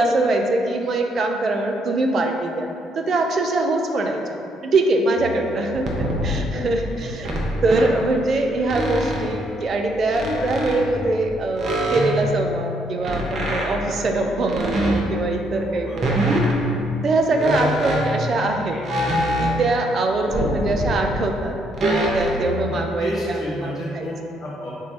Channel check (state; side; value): normal; both; correlation 0.73